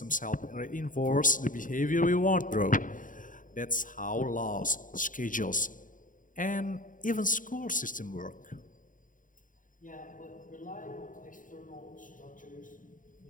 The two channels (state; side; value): late; right; 0.39 ms